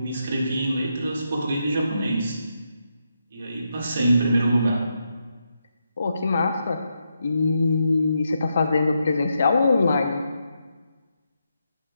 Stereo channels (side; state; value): both; inverted; correlation -0.83